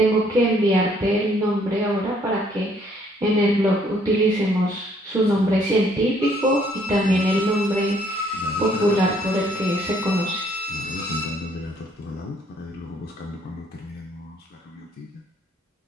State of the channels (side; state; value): both; normal; correlation 0.65